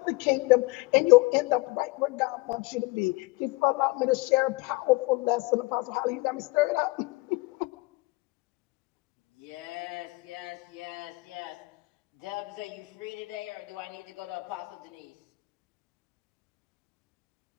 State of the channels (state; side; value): quieter; right; 23.7 dB